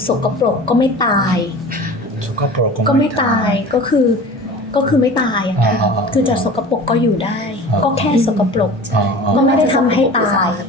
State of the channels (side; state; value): both; normal; correlation 0.38